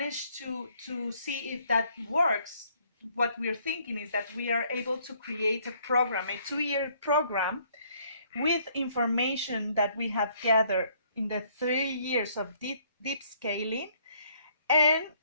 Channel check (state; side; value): inverted; both; correlation -0.64